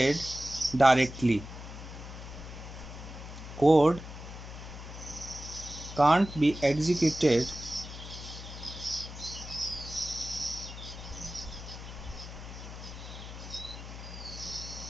directly. Code can't be executed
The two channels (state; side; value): noise; left; hum, 11 dB below the sound